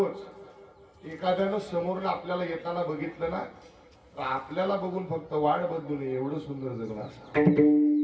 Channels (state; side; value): identical; both; correlation 1.00